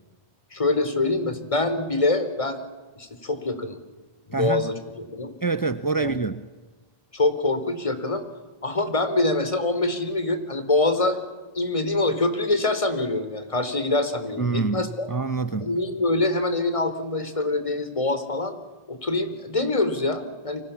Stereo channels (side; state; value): right; late; 1.6 ms